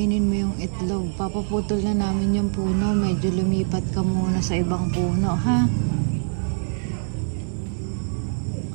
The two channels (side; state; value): left; silent; digital silence